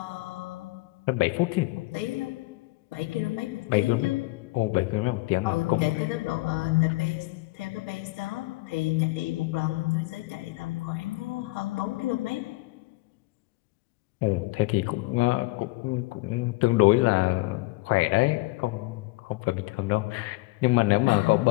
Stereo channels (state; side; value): quieter; right; 21.6 dB